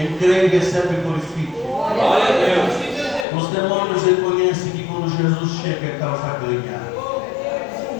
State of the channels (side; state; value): right; drops out; at 3.2 s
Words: crê e recebe, glorifique. Os demônios reconhecem que quando Jesus chega é causa ganha.